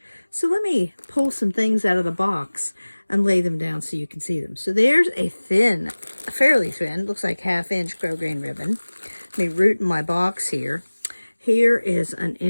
So let me pull some things out of the box and lay them down so you can see them. So there's a thin, fairly thin, looks like 1/2 inch grosgrain ribbon. Let me root in my box here. Here is an 1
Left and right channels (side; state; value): both; inverted; correlation -1.00